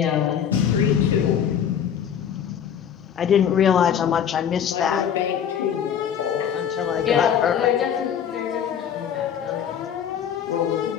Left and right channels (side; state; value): right; quieter; 8.7 dB